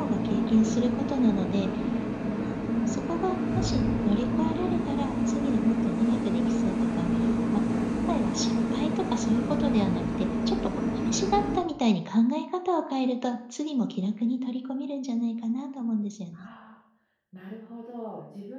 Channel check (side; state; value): both; identical; correlation 1.00